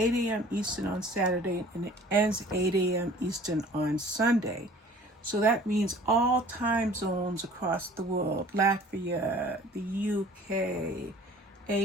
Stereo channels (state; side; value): normal; both; correlation 0.49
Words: a.m. Eastern on Saturday and it ends 8 a.m. Eastern on Sunday. So that means all time zones across the world, Latvia, the UK,